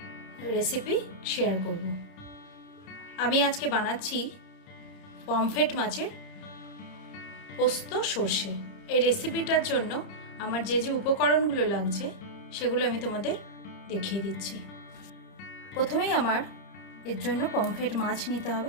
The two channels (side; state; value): right; late; 30 ms